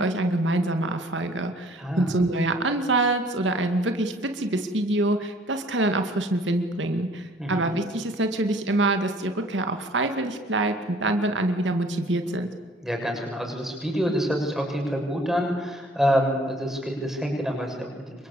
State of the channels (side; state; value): both; normal; correlation 0.55